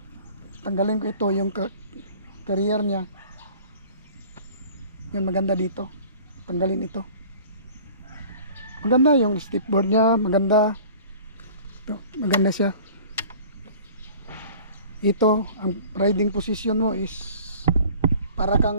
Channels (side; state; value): both; inverted; correlation -0.47